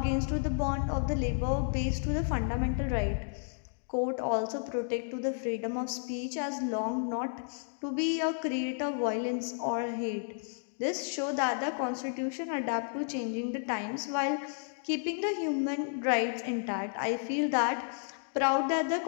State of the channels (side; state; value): right; silent; digital silence